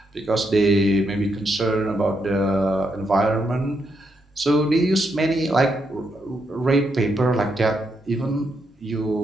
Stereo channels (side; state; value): both; normal; correlation 0.80